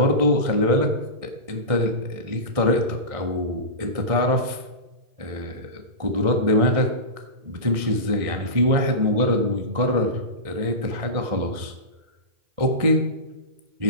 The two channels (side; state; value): left; late; 1.6 ms